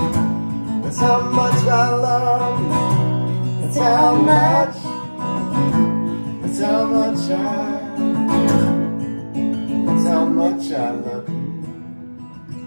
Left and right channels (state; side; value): inverted; both; correlation -1.00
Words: That's how much I love you. That's how much. That's how much That's how much I love you.